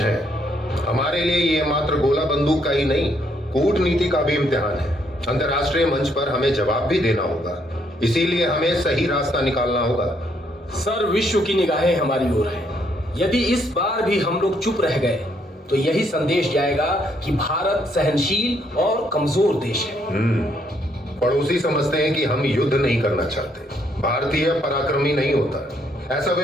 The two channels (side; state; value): both; normal; correlation 0.71